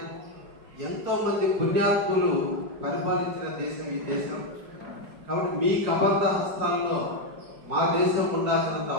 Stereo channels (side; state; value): left; late; 5.1 ms